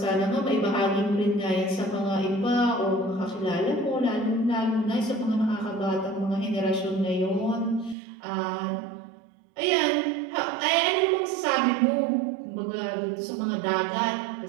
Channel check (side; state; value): left; drops out; at 8.0 s